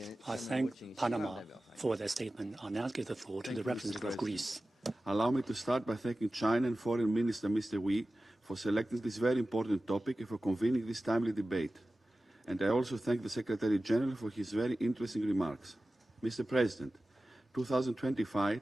thank Panama for their statement. I'll now give the floor to the representative of Greece. Allow me to start by thanking China and Foreign Minister Mr. Wang Yi for selecting this very important topic and for convening this timely debate. And I also thank the Secretary-General for his very interesting remarks. Mr. President, 2025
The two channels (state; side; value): normal; both; correlation 0.96